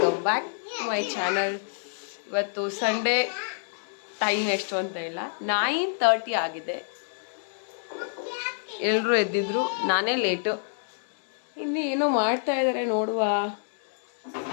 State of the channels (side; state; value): right; silent; 60 dB below the other